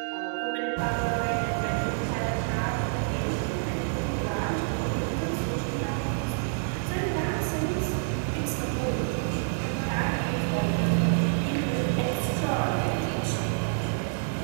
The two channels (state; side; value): silent; left; digital silence